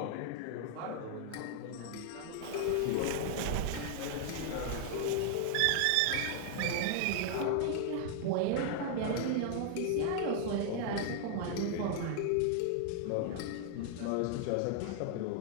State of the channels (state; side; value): different; both; correlation 0.00